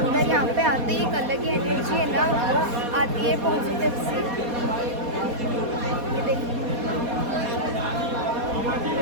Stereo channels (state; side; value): late; left; 4.2 ms